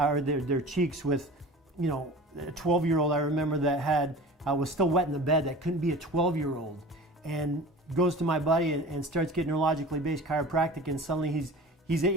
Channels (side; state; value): both; normal; correlation 0.39